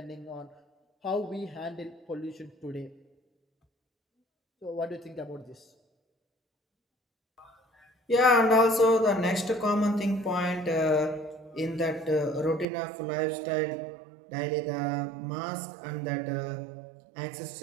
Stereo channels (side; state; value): left; drops out; at 12.7 s